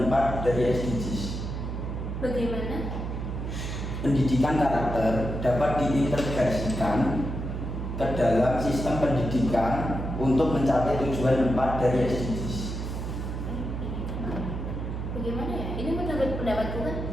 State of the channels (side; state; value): right; noise; hum, 4 dB below the sound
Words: 4 dari SDGs? Bagaimana? Pendidikan karakter dapat diintegrasikan ke dalam sistem pendidikan untuk mencapai tujuan 4 dari SDGs. Bagaimana ya? Ini menurut pendapatku kan?